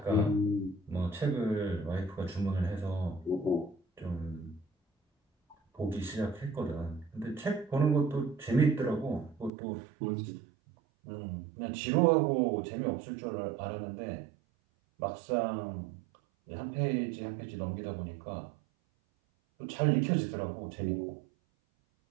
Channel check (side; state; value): left; drops out; at 9.5 s